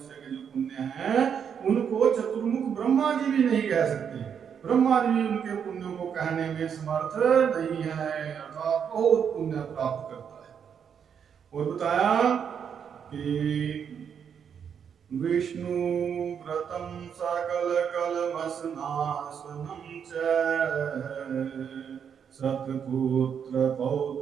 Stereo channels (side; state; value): left; quieter; 7.6 dB